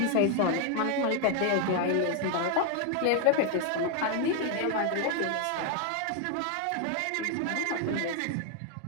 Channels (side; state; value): both; different; correlation 0.00